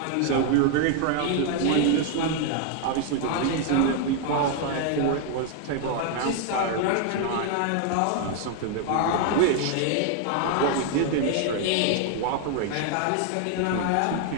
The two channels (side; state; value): both; different; correlation 0.00